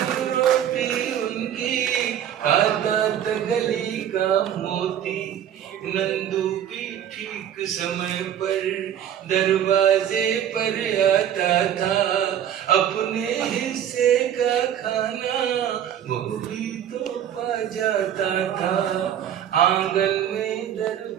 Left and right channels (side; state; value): left; quieter; 10.0 dB